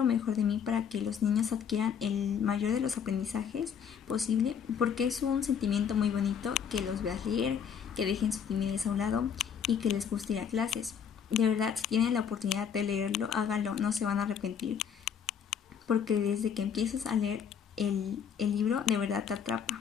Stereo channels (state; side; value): quieter; right; 7.6 dB